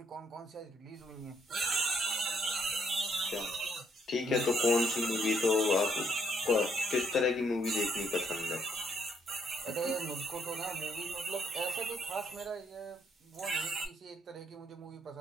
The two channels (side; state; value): both; normal; correlation 0.70